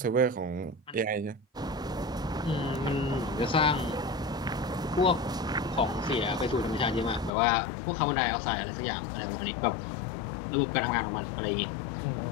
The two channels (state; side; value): drops out; right; at 7.3 s